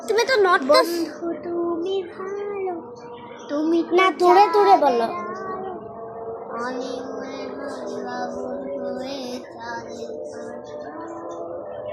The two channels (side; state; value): both; identical; correlation 1.00